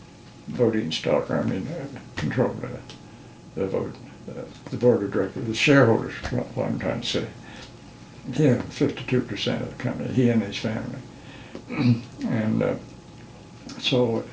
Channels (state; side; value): identical; both; correlation 1.00